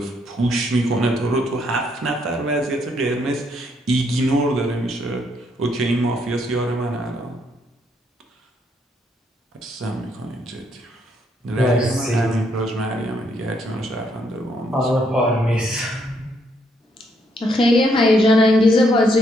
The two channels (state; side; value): normal; both; correlation 0.73